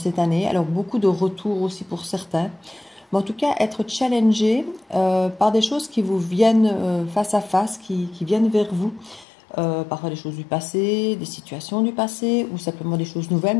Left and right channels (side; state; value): right; drops out; at 9.2 s